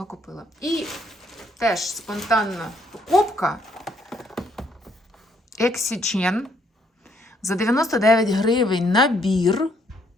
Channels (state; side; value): normal; both; correlation 0.69